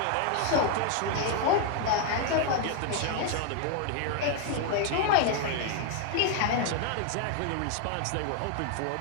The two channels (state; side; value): different; both; correlation 0.00